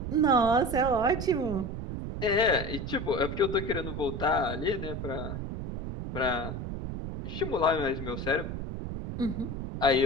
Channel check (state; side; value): noise; right; rumble, 6 dB below the sound